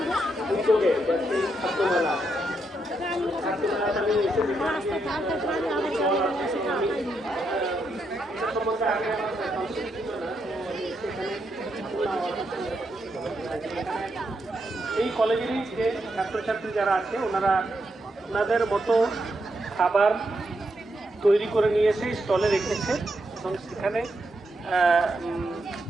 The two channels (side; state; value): both; normal; correlation 0.81